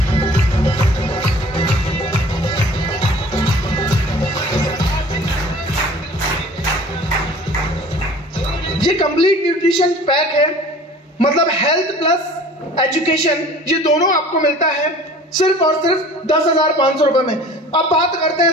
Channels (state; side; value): normal; both; correlation 0.46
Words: ये कंप्लीट न्यूट्रिशन पैक है, मतलब हेल्थ प्लस एजुकेशन, ये दोनों आपको मिलता है सिर्फ और सिर्फ 10,500 रुपए में। अब बात करते हैं